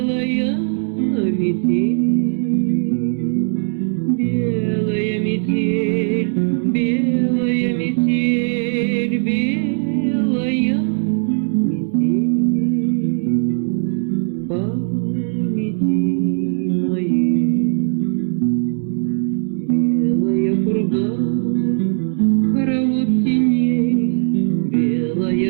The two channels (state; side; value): silent; left; 61 dB below the other